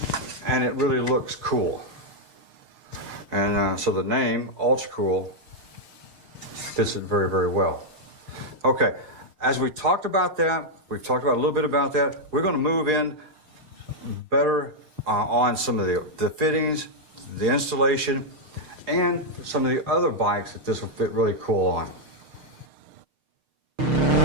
And it really looks cool. And so the name, UltraCool, fits it very, very well. Okay, as we talked about that, we've talked about a little bit about that, we're going to move in better on some of the fittings, the installation, and some of the other bikes that this will fit really cool on.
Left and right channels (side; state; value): left; late; 6.6 ms